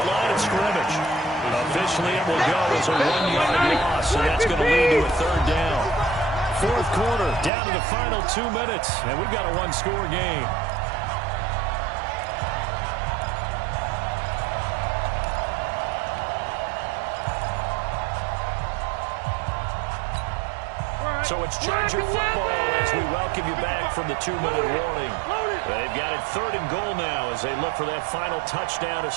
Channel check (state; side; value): drops out; left; at 7.5 s